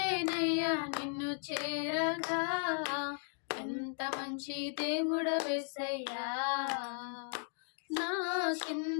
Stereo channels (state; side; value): silent; right; 54 dB below the other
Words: నిన్ను చేరగా ఎంత మంచి దేవుడు యేసయ్యా నా